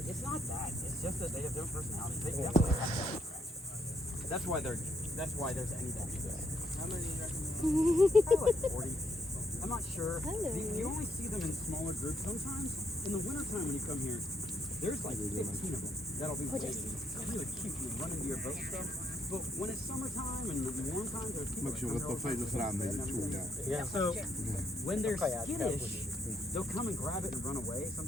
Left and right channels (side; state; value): both; normal; correlation 0.73